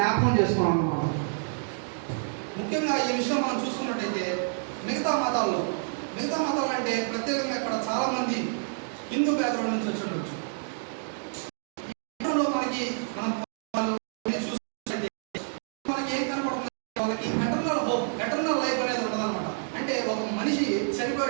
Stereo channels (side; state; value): left; silent; digital silence